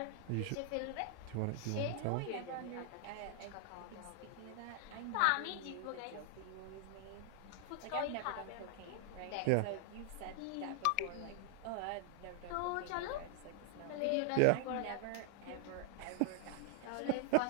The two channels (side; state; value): both; different; correlation 0.00